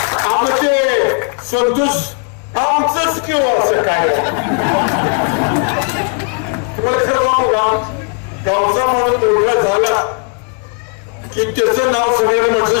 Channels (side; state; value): right; quieter; 38.6 dB